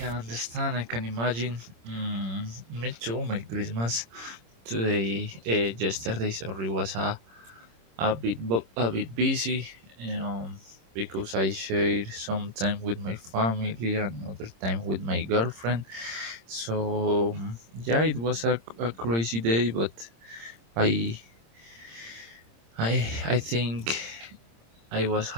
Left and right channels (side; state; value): left; late; 26 ms